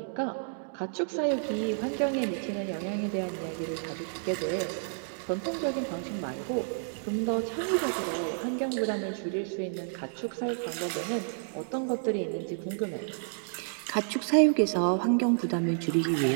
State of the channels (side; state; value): left; silent; digital silence